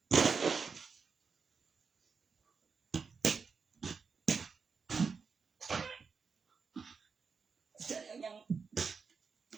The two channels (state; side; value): quieter; left; 5.4 dB